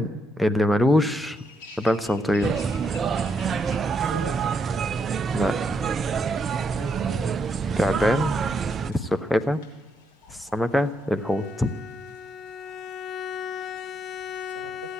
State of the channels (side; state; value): both; normal; correlation 0.78